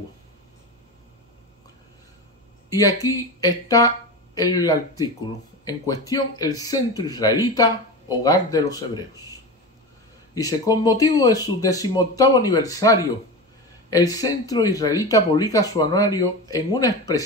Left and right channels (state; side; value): normal; both; correlation 0.25